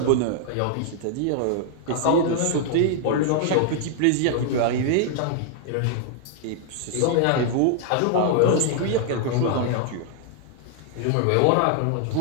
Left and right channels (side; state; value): both; different; correlation 0.00